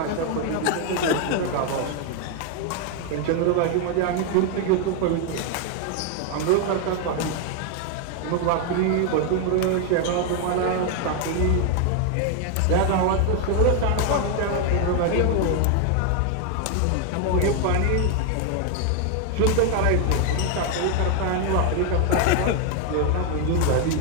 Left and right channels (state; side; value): different; both; correlation 0.01